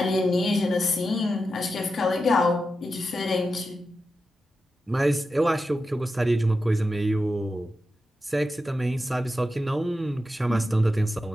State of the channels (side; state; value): both; normal; correlation 0.90